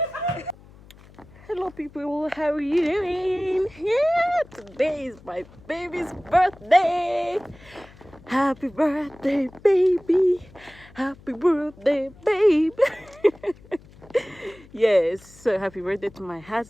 Hello people, how are you doing? Yeah, today is my baby's birthday. Happy birthday, baby. Happy birthday, baby. Yes, so happy birthday to my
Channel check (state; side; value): noise; left; hum, 23 dB below the sound